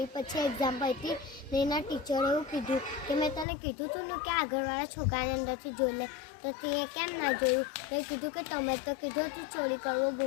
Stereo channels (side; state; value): right; drops out; at 3.5 s